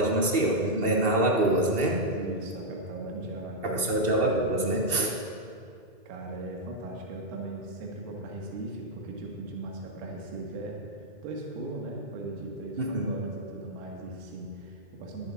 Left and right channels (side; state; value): left; late; 2.7 ms